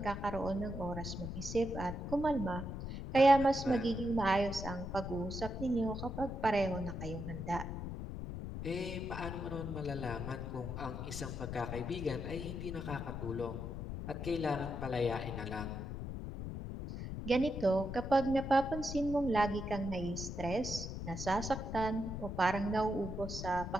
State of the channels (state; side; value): noise; left; rumble, 6 dB below the sound